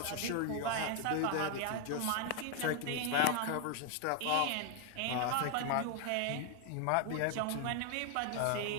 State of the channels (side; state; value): both; different; correlation 0.00